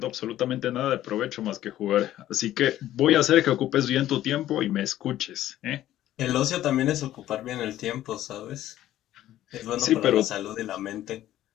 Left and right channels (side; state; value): right; quieter; 13.3 dB